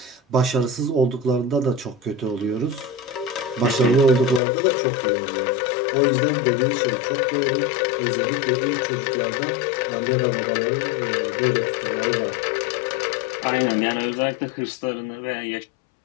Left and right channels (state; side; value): drops out; right; at 4.4 s